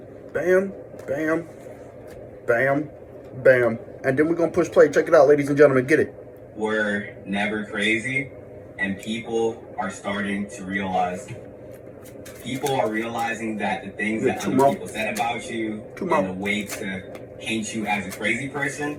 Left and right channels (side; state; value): both; identical; correlation 1.00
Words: Bam, bam, bam, bam. And then we're gonna push play. Check it out, ladies and gentlemen. Get it. We're never crazy, and people are starting to realize. People are realizing that the things that other people said about you and the way to paint you as a crazy person